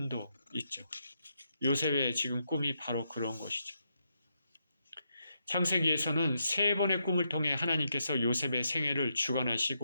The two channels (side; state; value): both; inverted; correlation -0.81